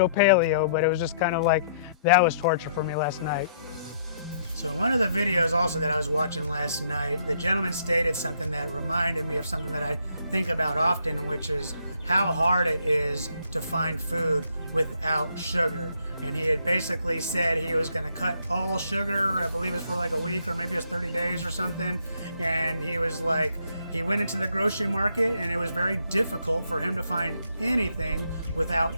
paleo. But it was just kind of like, that was torture for me last night. So in one of the videos also that I was watching last night, the gentleman stated something that reminded me of something that I think about often, which is how hard it is to find food without sugar. And he had basically said he was going to cut all sugar, I believe it was for like a week or maybe it was 30 days or something. And he was like, he went into the grocery market and it was very difficult for him to find anything without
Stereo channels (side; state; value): both; inverted; correlation -0.69